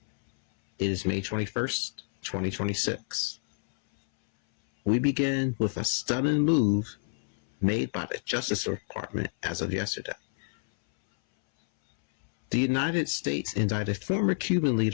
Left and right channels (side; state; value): right; silent; 59 dB below the other